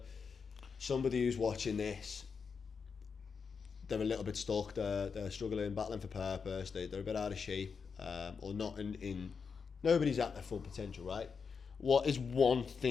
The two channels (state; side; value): quieter; right; 5.7 dB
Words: somebody who's watching this, they're a little bit stuck, they're struggling, battling for purpose, they're a bit out of shape, or not in nobody's at their full potential, right? What is one